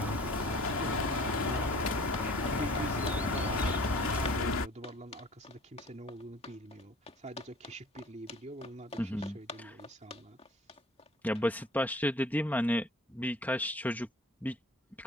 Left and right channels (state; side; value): normal; both; correlation 0.49